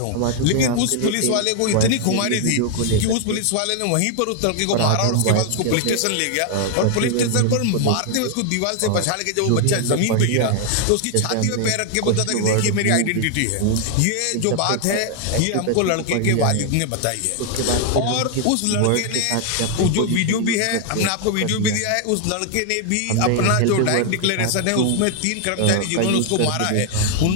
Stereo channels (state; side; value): different; both; correlation 0.00